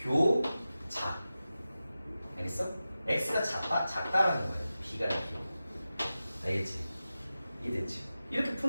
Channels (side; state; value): both; inverted; correlation -0.94